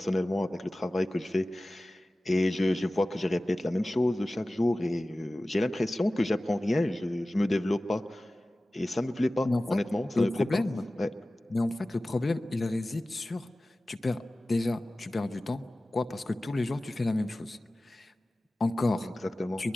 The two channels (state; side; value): normal; both; correlation 0.97